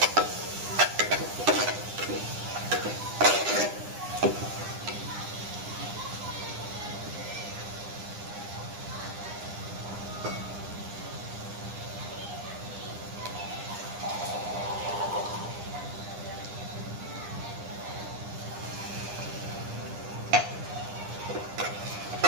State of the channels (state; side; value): late; left; 9.9 ms